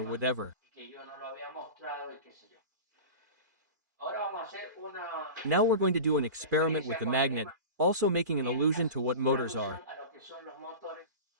whatever. y que yo no lo había mostrado y qué sé yo. Ahora vamos a hacer una Now we're going to do an experiment with referencia the con el magnet, also making an allusion to what una motors alusión are. a lo que son los motores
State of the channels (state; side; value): late; left; 2.4 ms